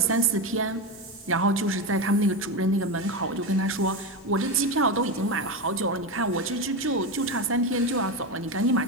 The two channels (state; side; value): normal; both; correlation 0.15